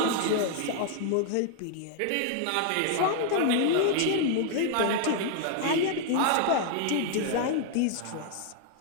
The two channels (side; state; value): both; different; correlation 0.00